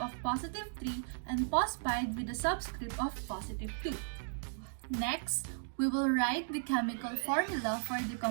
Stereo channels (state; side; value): silent; left; digital silence